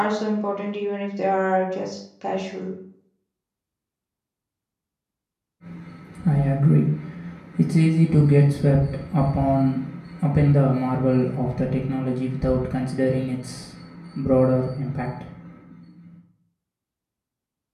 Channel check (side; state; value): both; identical; correlation 1.00